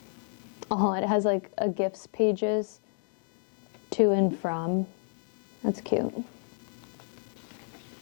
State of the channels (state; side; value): silent; right; digital silence